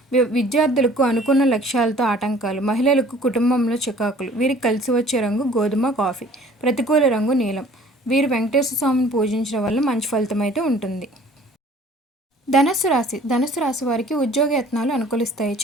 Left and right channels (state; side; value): normal; both; correlation 0.52